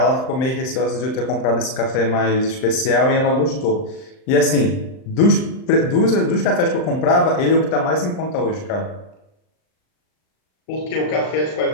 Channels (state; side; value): late; right; 39 ms